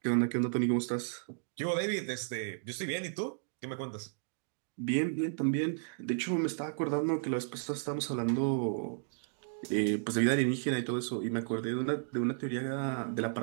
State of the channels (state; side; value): silent; left; digital silence